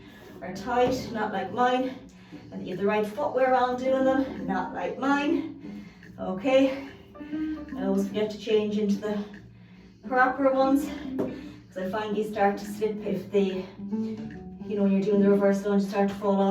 are tight, not like mine. And you have the right footwear on doing them, not like mine. Okay, I always forget to change into the proper ones, because I find you start to slip if they, you know, when you're doing the reverse lunge, start to fall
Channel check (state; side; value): identical; both; correlation 1.00